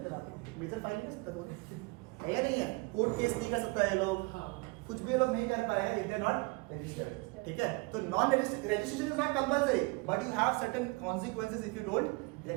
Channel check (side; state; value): left; quieter; 26.3 dB